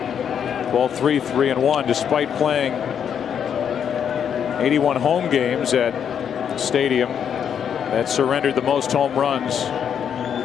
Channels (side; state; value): right; quieter; 8.2 dB